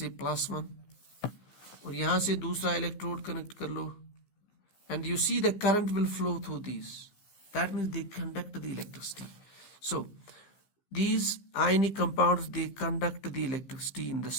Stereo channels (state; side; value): late; right; 15 ms